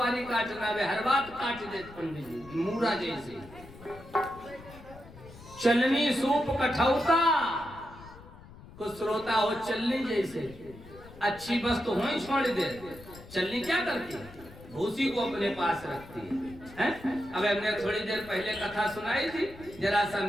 काटना, वे हर बात काट देते पंडित जी मूरा जैसे। चलनी सूप कठौता, कुछ श्रोता हो चलनी जैसे। अच्छी बस तो वहीं छोड़ दे, चलनी क्या करती है? भूसी को अपने पास रखती है। अब हमने थोड़ी देर पहले कथा सुनाई थी, जरा सा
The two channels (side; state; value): left; noise; rumble, 19 dB below the sound